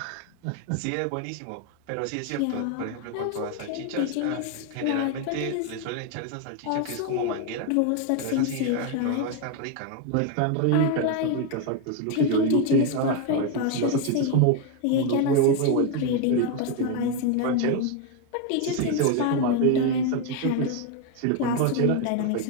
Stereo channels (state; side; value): different; both; correlation 0.01